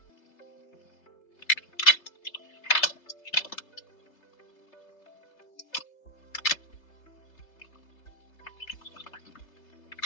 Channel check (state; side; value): late; right; 3.3 ms